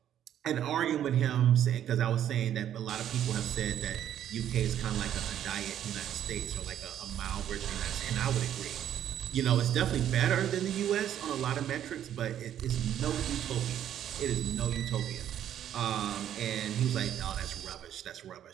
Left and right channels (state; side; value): quieter; left; 10.6 dB